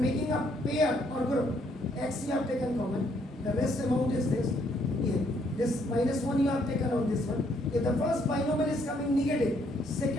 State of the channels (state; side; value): normal; both; correlation 0.69